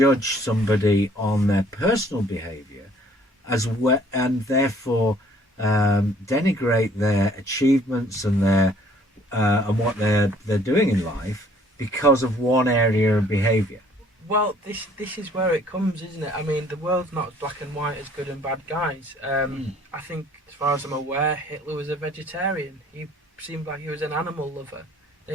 somebody on their personal behaviour as well, and therefore denigrate their achievements and their and what they're doing in life because of one area of behaviour? Well, this is where it comes, isn't it? I mean, the world's not black and white as good and bad guys. I think, as far as I'm aware, Hitler was a vegetarian. He seemed like he was an animal lover.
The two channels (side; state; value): both; normal; correlation 0.58